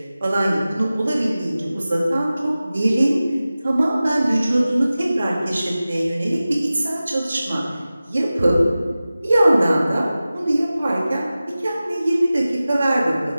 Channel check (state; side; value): inverted; both; correlation -0.96